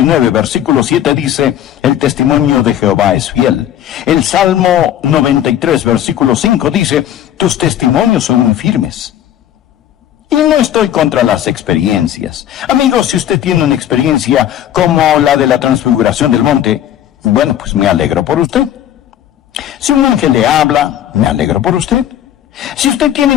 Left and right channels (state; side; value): quieter; right; 11.1 dB